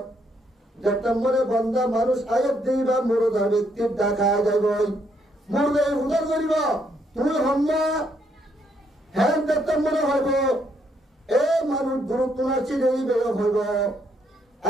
যেতমরে বন্ধা মানুষ আয়াত দিবা মুরদা ব্যক্তির দেখা যাইব মুরদা উদার করিব তুই হম্মা হ্যাঁ যেতমরে হইব এ মানুষ গুরুত্ব নাচি দেই বের হইব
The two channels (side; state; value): both; normal; correlation 0.73